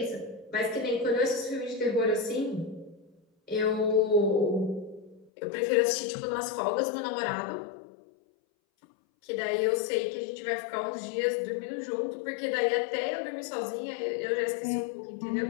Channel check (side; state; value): right; drops out; at 5.3 s